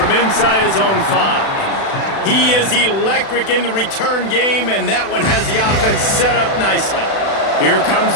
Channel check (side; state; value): right; late; 36 ms